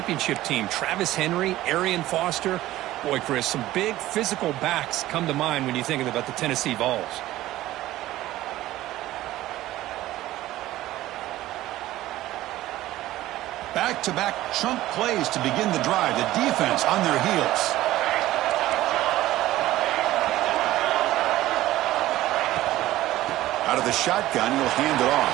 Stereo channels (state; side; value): quieter; left; 15.5 dB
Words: team. Travis Henry, Arian Foster. Boy, Chris, some big physical backs come to mind when you think about the Tennessee Vols. Back-to-back chunk plays to begin the drive. The defense on their heels. Out of the shotgun, he'll hand it